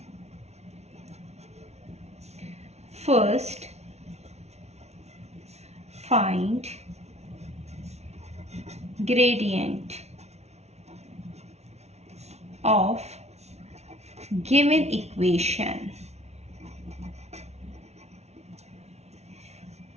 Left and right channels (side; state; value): left; late; 0.31 ms